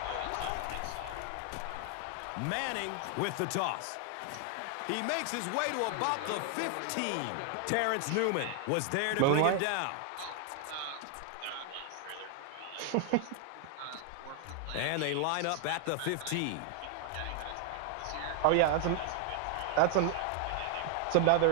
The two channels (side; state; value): both; different; correlation 0.00